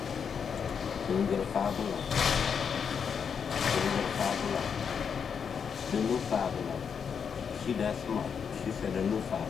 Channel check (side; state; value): right; quieter; 6.8 dB